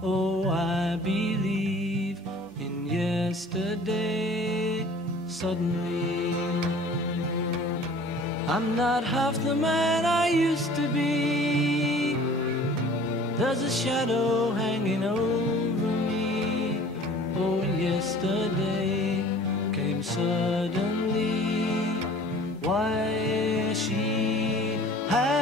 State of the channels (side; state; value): both; normal; correlation 0.48